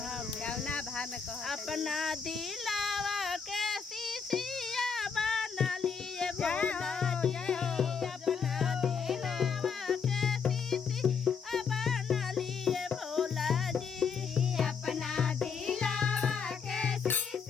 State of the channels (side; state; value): right; quieter; 6.1 dB